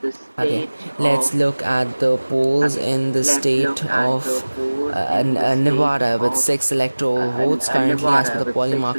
Okay, let's look at the polls in the state of Nevada with 6 electoral votes. Currently, as per the polling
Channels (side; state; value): both; inverted; correlation -1.00